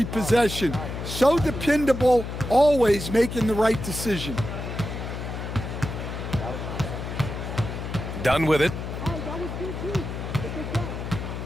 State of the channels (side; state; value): left; noise; hum, 6 dB below the sound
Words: possession. So dependable, always making the right decision. Done with it.